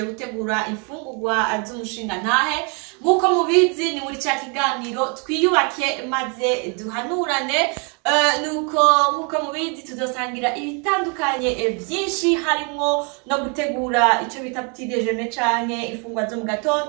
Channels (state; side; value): quieter; left; 35.5 dB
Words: gutegura imfungurwa z'umushinga ntahe. Nkuko mubizi ni muri cya kiganiro twiyubake maze duhanurane. Nkuko mubizi tuzosangira ibitandukanye byinshi, harimo no gutegura icyo bita petit déjeuner canke ifungwa zo mu